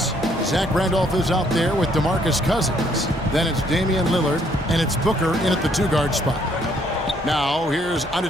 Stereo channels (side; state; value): both; normal; correlation 0.67